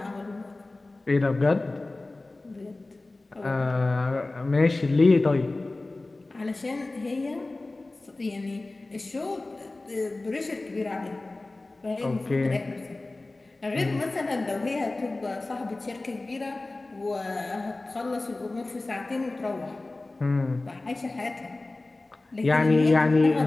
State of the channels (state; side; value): quieter; right; 3.1 dB